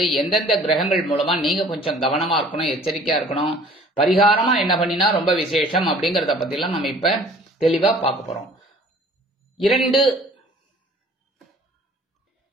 எந்தெந்த கிரகங்கள் மூலமா நீங்க கொஞ்சம் கவனமா இருக்கணும், எச்சரிக்கையா இருக்கணும், பரிகாரமா என்ன பண்ணினா ரொம்ப விசேஷம் அப்படிங்கறத பத்தி எல்லாம் நம்ம இப்ப தெளிவா பார்க்க போறோம்.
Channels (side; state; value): both; normal; correlation 0.51